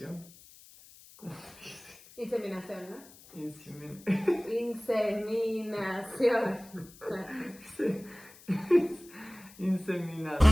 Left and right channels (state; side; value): noise; left; hiss, 22 dB below the sound